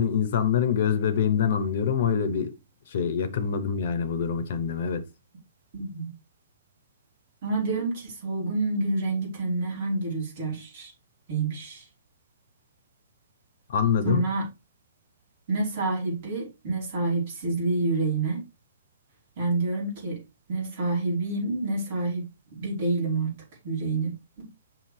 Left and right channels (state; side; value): inverted; both; correlation -0.54